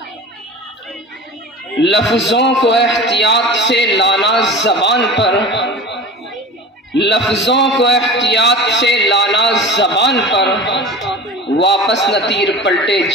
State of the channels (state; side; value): normal; both; correlation 0.35